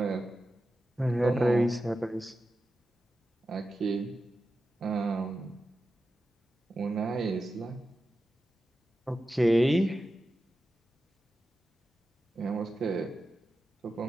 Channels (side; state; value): both; normal; correlation 0.91